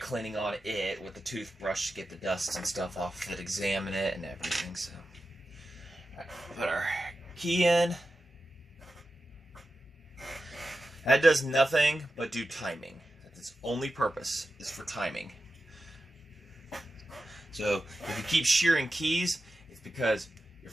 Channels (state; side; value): normal; both; correlation 0.92